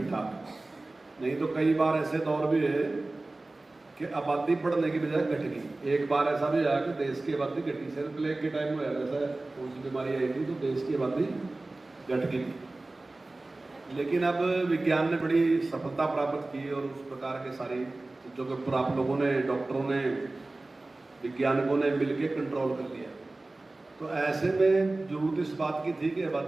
ठाक। नहीं तो कई बार ऐसे दौर भी है कि आबादी बढ़ने की बजाय घट गई। एक बार ऐसा भी आया कि देश की आबादी घटी, सिर्फ प्लेग के टाइम में ऐसा कौन सी बीमारी आई थी तो देश की आबादी घट गई। लेकिन अब विज्ञान ने बड़ी सफलता प्राप्त की और उस प्रकार के सारी चीज़ों के ऊपर आप लोगों ने, डॉक्टरों ने, वैज्ञानिकों ने मिलकर कंट्रोल कर लिया। तो ऐसे में जरूरत इस बात की थी कि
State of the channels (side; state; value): left; quieter; 3.0 dB